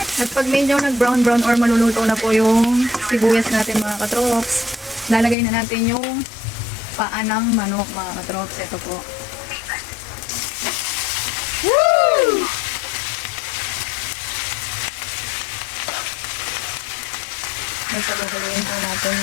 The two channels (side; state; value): right; drops out; at 5.4 s